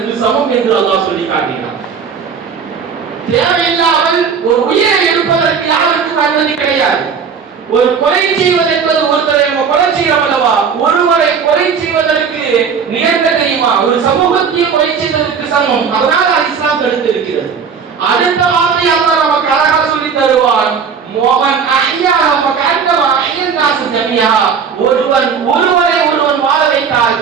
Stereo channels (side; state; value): left; quieter; 6.3 dB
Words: சமம் என்று அல்லாஹ் சொல்லி காட்டுகிறான். தேவையில்லாமல் ஒரு உயிரை எடுப்பதற்கு யாருக்கும் அனுமதி கிடையாது. ஒரு கொலை செய்வது என்பது ஒருத்தரை நம்ம கொலை செய்யறோம் அல்லவா? ஒருவரை கொலை செய்வதற்கு நிகழ்ந்த தெரியுமா? ஒரு சமூகத்தையே கொலை செய்வதற்கு சமம். அதனால இஸ்லாம் தடுத்து இருக்கிறது. அடுத்த வார்த்தை அல்லாஹ் நமக்கு அழகாக சொல்லி தருவான். மோகன் அஹ்யா ஃபகஅன்னமா அஹ்யன் நாஸ் ஜமீஆ. ஒருவரை வாழ வைத்தால்